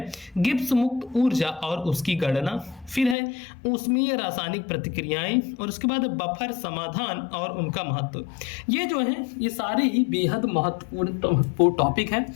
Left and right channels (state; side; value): drops out; right; at 3.2 s